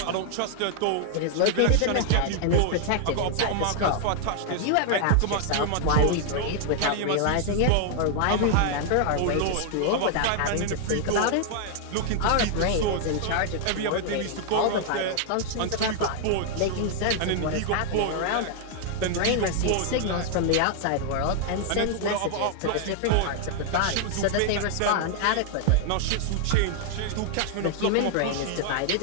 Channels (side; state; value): both; different; correlation 0.00